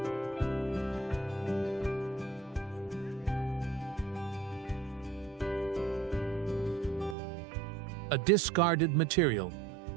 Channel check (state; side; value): drops out; left; at 7.2 s